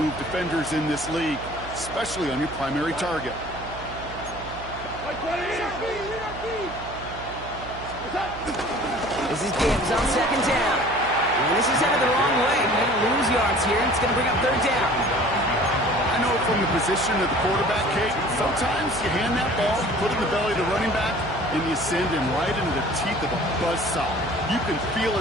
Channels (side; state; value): right; noise; hum, 14 dB below the sound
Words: defenders in this league, especially on your primary target. This is Gibbs on 2nd down. And this is headed the wrong way. They're going to lose yards here. It's going to bring up 3rd down. I know from the position of the quarterback, Kate, sometimes you hand that ball, put it in the belly of the running back, and you send him right into the teeth of a buzzsaw. You can feel